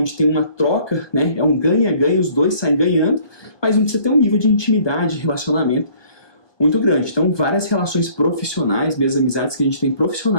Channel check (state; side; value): late; right; 1.2 ms